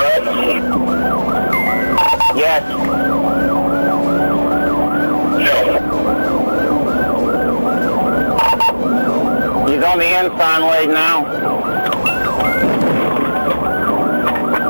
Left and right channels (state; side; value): inverted; both; correlation -1.00